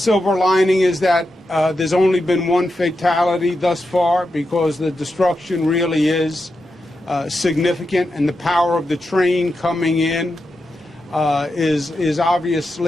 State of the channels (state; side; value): normal; both; correlation 0.88